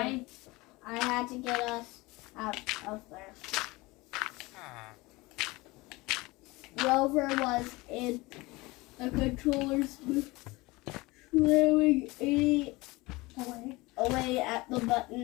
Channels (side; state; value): right; quieter; 22.4 dB